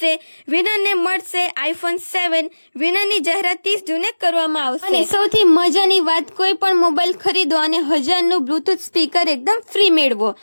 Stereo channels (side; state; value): both; inverted; correlation -1.00